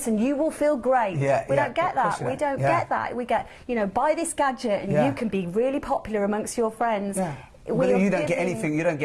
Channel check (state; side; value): identical; both; correlation 1.00